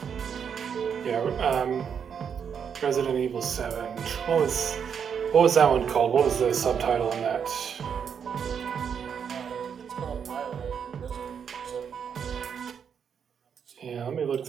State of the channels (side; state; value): left; quieter; 7.3 dB